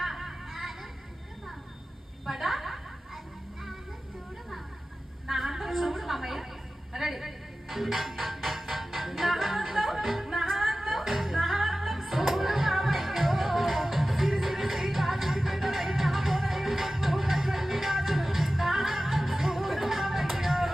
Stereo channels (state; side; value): normal; both; correlation 0.96